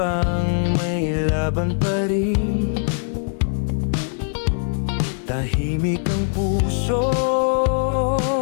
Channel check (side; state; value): right; silent; digital silence